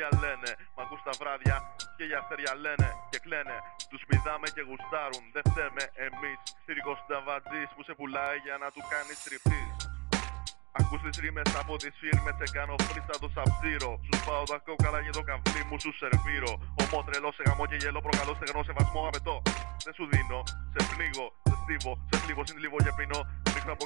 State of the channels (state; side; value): quieter; left; 28.3 dB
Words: λένε, μ' ακούς τα βράδια και για αστέρια λένε και κλαίνε. Τους πηδάμε και γουστάρουν, δεν φταίμε εμείς. Θηρικός συνταβατζής που σε πουλάει για να του κάνεις τριφτής. Ακούς τις ρήμες από τις φίρμες, σε κάνω φρίστα το σαψίρο. Σου σπάω τα κόκαλα και το καβλί μου σου σερβίρω. Ομό τρελό σε γαμό και γελό, προκαλώ στεγνό σεβασμό απαιτώ. Δεν σου δίνω, σε πνίγω, σε στίβω, σε θλίβω, συντλίβω και πίνω. Ρίχνω από